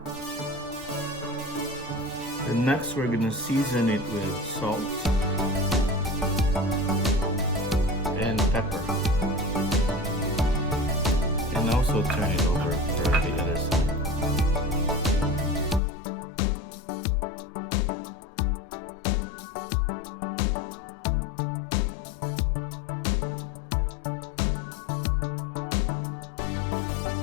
And next we're gonna season it with salt and pepper. And also turn it over for the other side.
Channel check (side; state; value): right; drops out; at 15.8 s